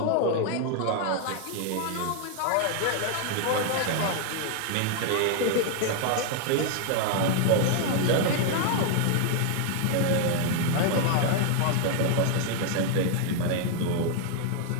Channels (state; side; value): different; both; correlation 0.00